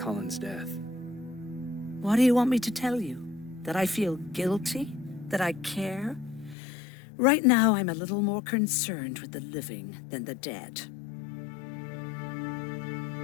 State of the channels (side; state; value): right; drops out; at 6.6 s